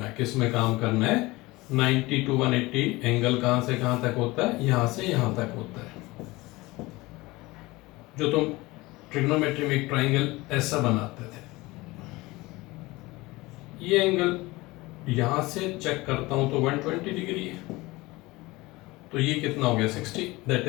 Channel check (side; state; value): right; quieter; 21.3 dB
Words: है। किस में काम करना है, 90 to 180 एंगल कहां से कहां तक होता है, यहां से यहां तक होता है। जो तुम ट्रिग्नोमेट्री में एक ट्राइंगल ऐसा बनाते थे, ये एंगल यहां से चेक करता हूं तो 120 डिग्री है, तो ये कितना हो गया, 60। That